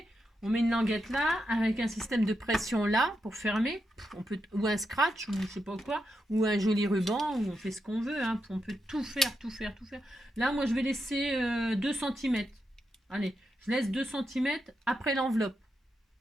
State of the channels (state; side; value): normal; both; correlation 0.85